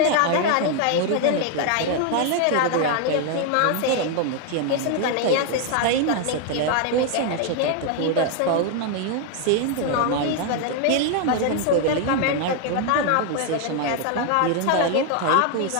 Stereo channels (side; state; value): both; different; correlation 0.00